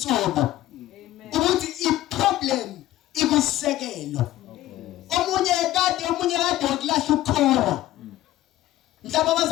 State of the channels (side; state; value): right; quieter; 14.7 dB